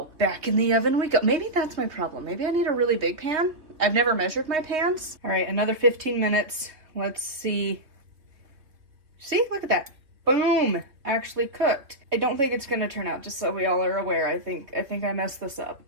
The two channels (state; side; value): late; left; 3.4 ms